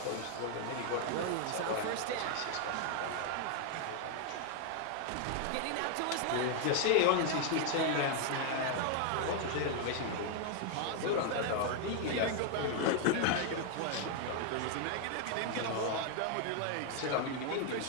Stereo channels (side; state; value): both; different; correlation 0.00